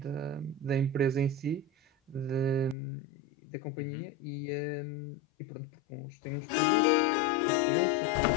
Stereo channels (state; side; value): drops out; right; at 2.8 s